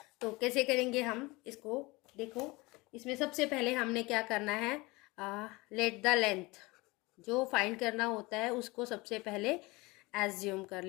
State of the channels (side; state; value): right; quieter; 23.3 dB